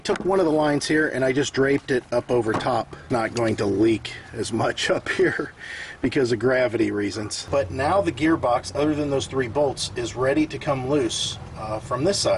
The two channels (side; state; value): both; identical; correlation 1.00